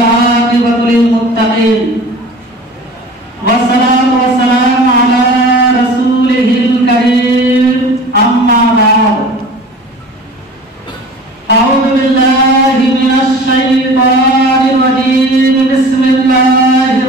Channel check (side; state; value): both; normal; correlation 0.41